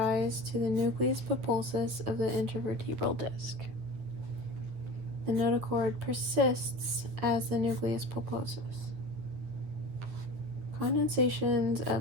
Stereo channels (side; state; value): left; late; 9.4 ms